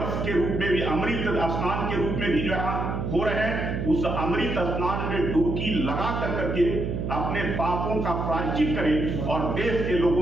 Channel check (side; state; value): right; noise; hum, 3 dB below the sound